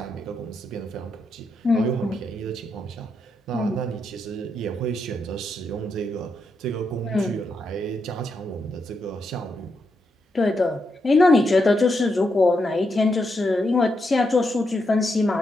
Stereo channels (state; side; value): normal; both; correlation 0.82